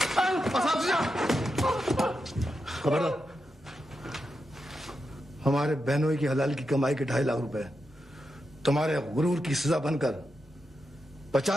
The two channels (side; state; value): both; normal; correlation 0.87